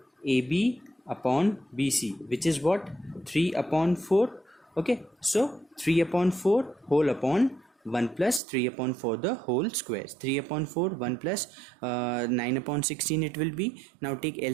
AB upon BC, which is what? 3 upon 4. Okay, so 3 upon 4 whole upon 1 plus 3 upon 4 the whole squares. 3 upon 4, 1 plus 9 upon 16 it will be. Now take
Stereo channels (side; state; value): left; drops out; at 8.4 s